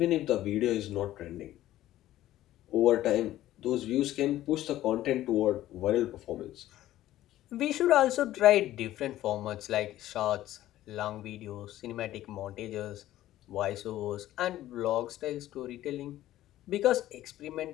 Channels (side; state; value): right; quieter; 14.2 dB